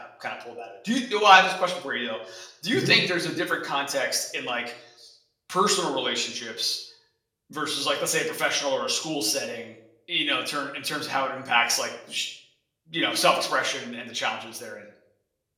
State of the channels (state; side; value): identical; both; correlation 1.00